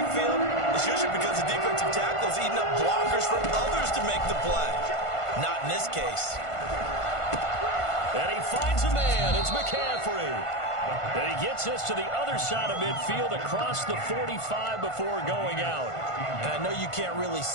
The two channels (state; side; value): late; right; 1.5 ms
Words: it's usually because the defensive tackle is eating up blockers for others to make the play. Not in this case. And he finds a man. It's McCaffrey. And he gets us to the other side of midfield across the 45 before going out. And I know you can't really